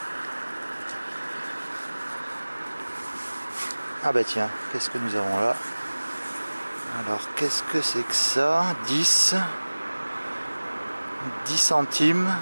Ah bah tiens, qu'est-ce que nous avons là? Alors qu'est-ce que c'est que ça? 10 centimes.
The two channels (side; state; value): both; inverted; correlation -1.00